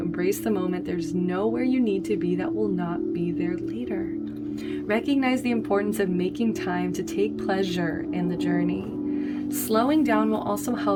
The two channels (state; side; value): identical; both; correlation 1.00